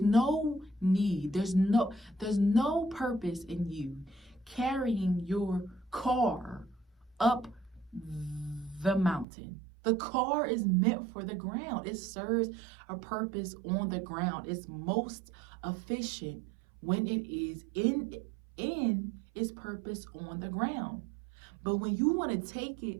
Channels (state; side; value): drops out; left; at 9.2 s